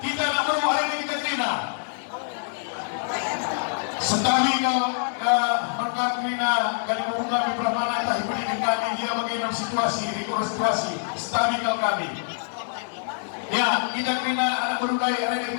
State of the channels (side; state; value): right; silent; 62 dB below the other